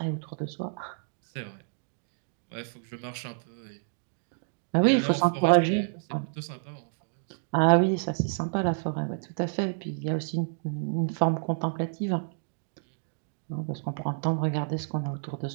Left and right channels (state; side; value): silent; left; digital silence